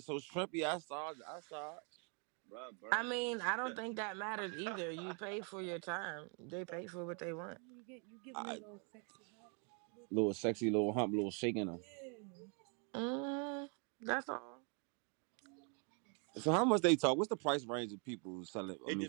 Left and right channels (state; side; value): quieter; left; 37.7 dB